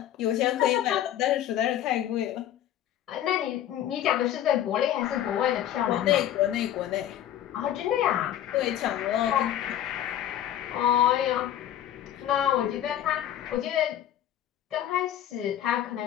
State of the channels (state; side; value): quieter; right; 11.6 dB